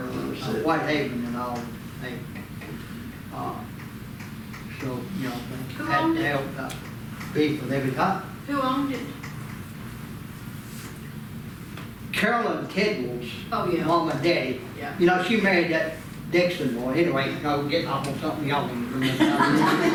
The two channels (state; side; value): identical; both; correlation 1.00